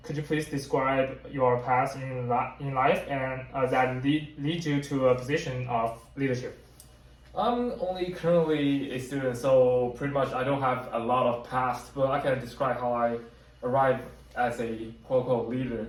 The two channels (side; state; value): both; identical; correlation 1.00